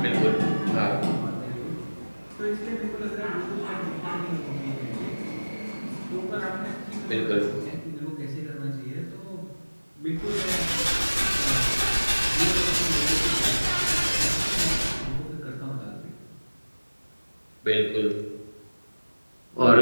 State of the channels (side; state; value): both; inverted; correlation -1.00